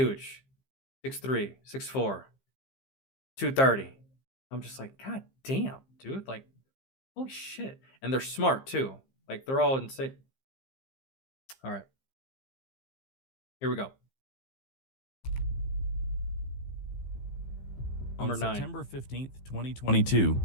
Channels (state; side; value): late; right; 15 ms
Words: 6'3", 6'4", 230. I'm just like, God damn, dude. Like, holy shit. And they're smart too. Like, they're all insane. All right. Here we go. Number On 9. September 15th, 2022,